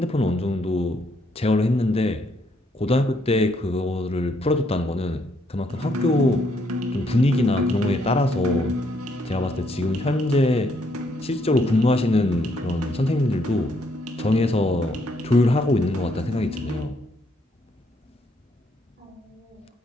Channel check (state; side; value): normal; both; correlation 0.72